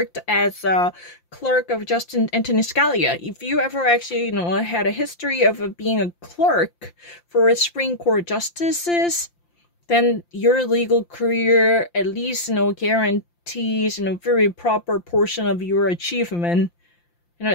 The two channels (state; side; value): late; right; 5.8 ms